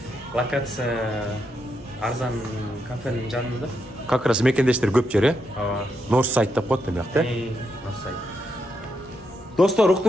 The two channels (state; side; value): normal; both; correlation 0.82